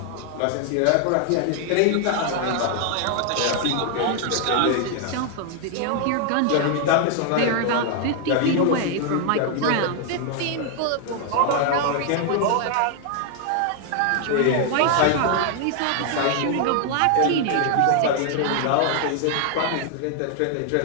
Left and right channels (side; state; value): both; different; correlation 0.00